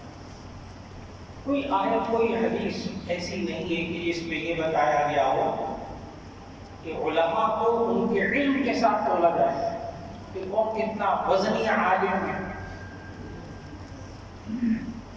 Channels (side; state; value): both; identical; correlation 1.00